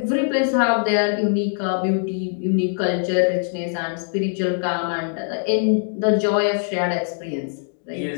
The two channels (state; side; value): silent; right; digital silence